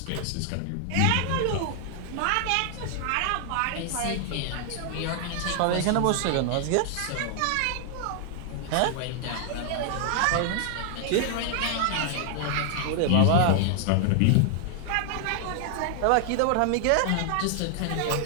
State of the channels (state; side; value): different; both; correlation 0.00